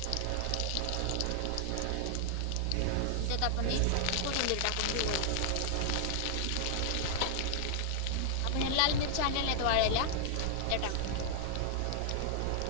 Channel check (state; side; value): different; both; correlation -0.01